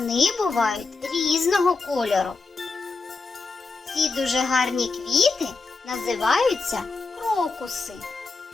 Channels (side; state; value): right; quieter; 4.1 dB